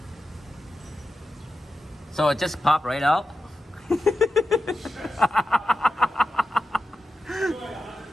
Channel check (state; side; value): normal; both; correlation 0.90